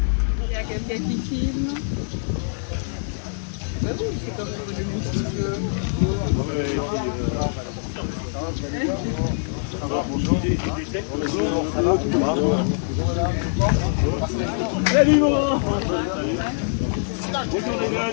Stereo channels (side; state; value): right; silent; digital silence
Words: Il y a quelqu'un qui filme. Bah oui, c'est comme le monsieur. Ça va, bonjour. Bonjour, ça va? Salut Laurent. Bonjour les